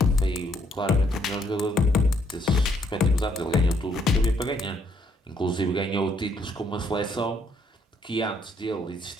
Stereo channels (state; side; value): normal; both; correlation 0.70